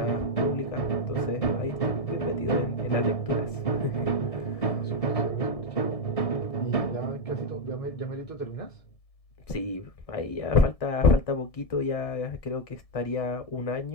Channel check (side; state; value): right; late; 1.7 ms